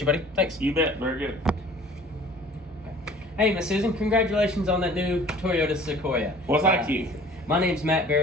you, buddy. Thanks. You bet. Very good. Hey, Miss Susan, congratulations on that new Toyota Sequoia. Well, thank you. My name's Matt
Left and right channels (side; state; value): both; normal; correlation 0.49